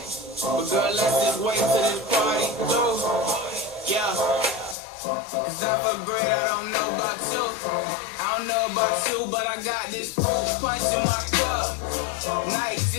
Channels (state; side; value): drops out; right; at 4.8 s